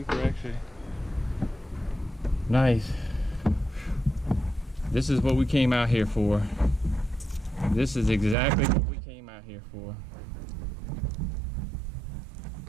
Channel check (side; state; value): left; drops out; at 8.3 s